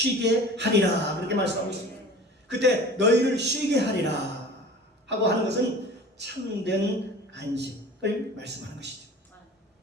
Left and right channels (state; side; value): normal; both; correlation 0.41